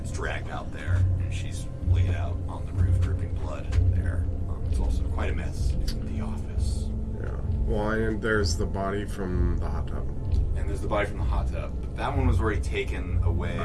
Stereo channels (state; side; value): identical; both; correlation 1.00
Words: dragged out there, and she's laid out on the roof, dripping blood there. It's also quite a mess in the office. Yeah. Well, and there's the body from the hot tub. And there's the body from the hot tub. That one was already taken